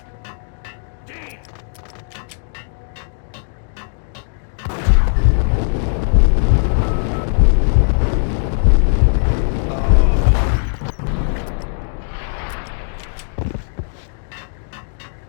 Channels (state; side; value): silent; right; digital silence